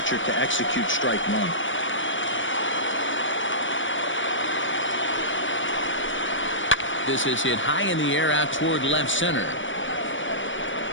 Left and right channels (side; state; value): right; late; 0.56 ms